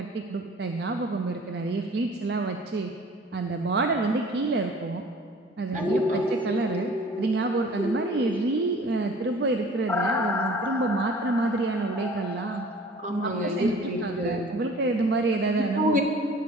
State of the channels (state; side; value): normal; both; correlation 0.48